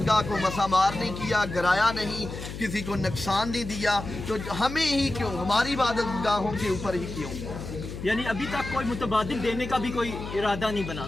को मसामार नहीं किया, गिराया नहीं, किसी को नुकसान नहीं दिया, तो हमें ही क्यों, हमारी इबादतगाहों के ऊपर ही क्यों? यानी अभी तक कोई मुतबादिल देने का भी कोई इरादा नहीं बना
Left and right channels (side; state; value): left; noise; hum, 9 dB below the sound